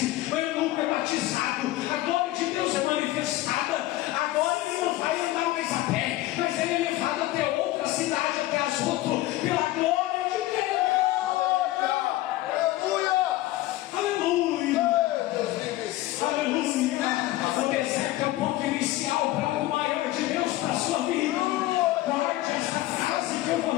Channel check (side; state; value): right; quieter; 16.6 dB